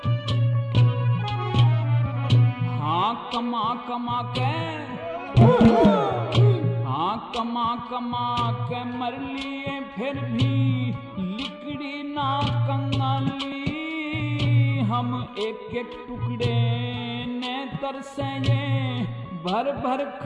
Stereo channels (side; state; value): both; identical; correlation 1.00